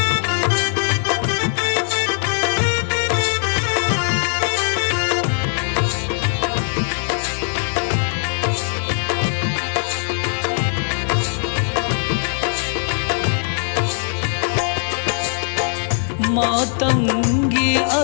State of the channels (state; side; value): silent; right; digital silence